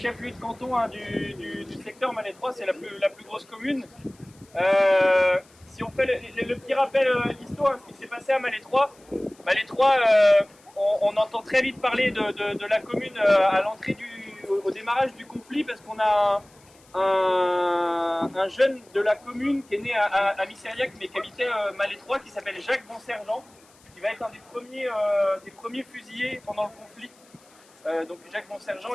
de canton hein, du secteur Malais 3, c'est la plus grosse commune. Si on fait le petit rappel d'histoire, ce qui s'est passé à Malais 3, Malais 3, on entend très vite parler de la commune à l'entrée au démarrage du conflit, parce qu'on a un jeune de la commune qui est né à Missériac, mais qui habitait Malais 3, qui s'appelle Jacques Bonsergent, qui va être un des premiers fusillés pendant le conflit. Donc Jacques Bonsergent,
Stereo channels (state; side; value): noise; left; hiss, 29 dB below the sound